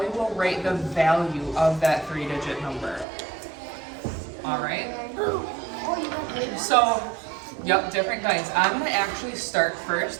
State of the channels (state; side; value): drops out; left; at 3.1 s